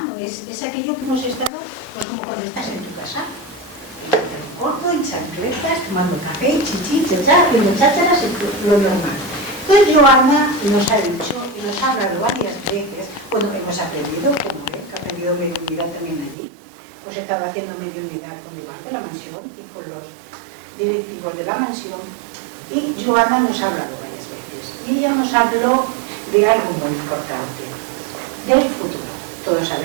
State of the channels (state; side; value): drops out; left; at 16.4 s